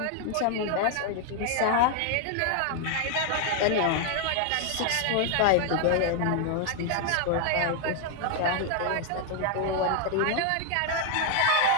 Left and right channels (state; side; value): different; both; correlation 0.00